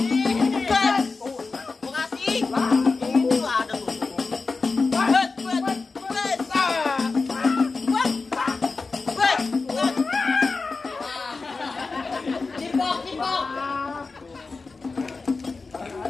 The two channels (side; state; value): right; quieter; 4.1 dB